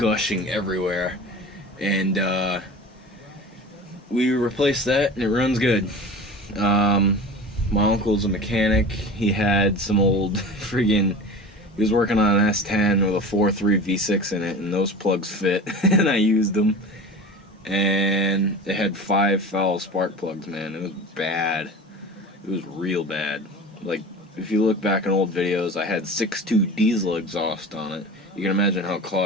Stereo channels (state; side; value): normal; both; correlation 0.35